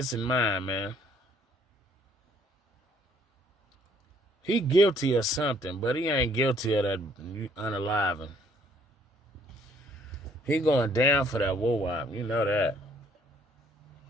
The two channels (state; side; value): normal; both; correlation 0.63